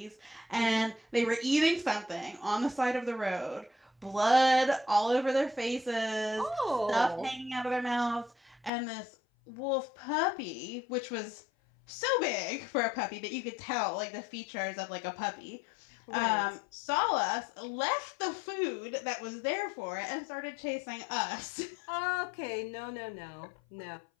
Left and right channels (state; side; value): drops out; right; at 8.7 s